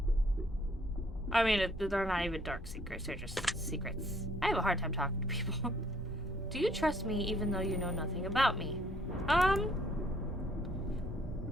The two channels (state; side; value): normal; both; correlation 0.64